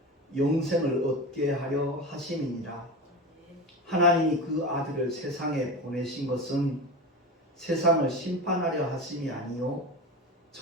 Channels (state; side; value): normal; both; correlation 0.26